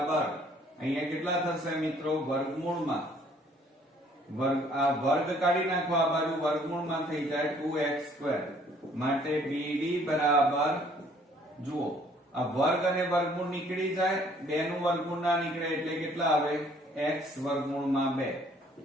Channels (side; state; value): both; normal; correlation 0.60